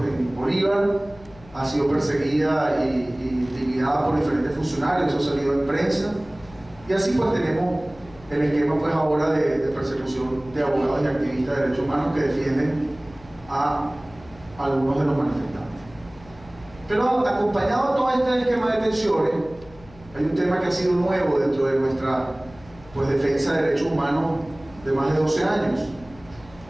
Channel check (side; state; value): left; noise; hum, 22 dB below the sound